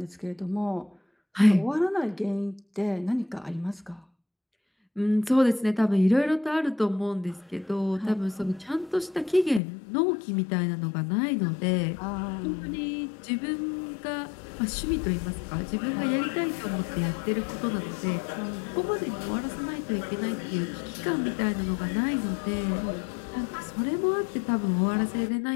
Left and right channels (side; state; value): right; drops out; at 9.6 s